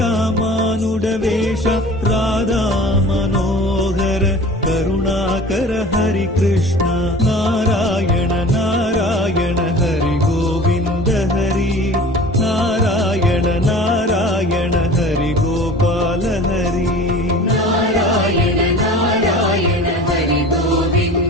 రాధా మనోహర కరుణాకర హరి కృష్ణ నారాయణ నారాయణ హరి గోవింద హరి నారాయణ నారాయణ హరి గోపాల హరి நாராயண நாராயண ஹரி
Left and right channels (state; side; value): normal; both; correlation 0.42